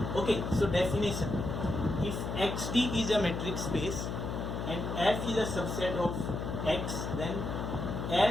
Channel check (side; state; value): left; noise; hum, 4 dB below the sound